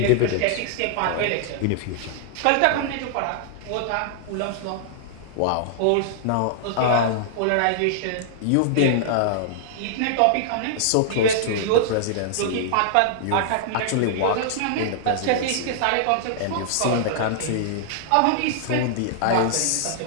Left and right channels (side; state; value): both; different; correlation -0.01